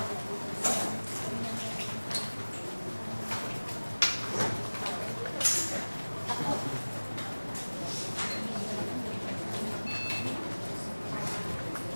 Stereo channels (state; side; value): inverted; both; correlation -1.00